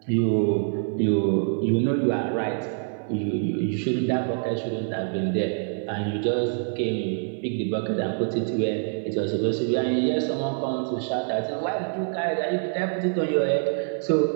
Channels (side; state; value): left; silent; digital silence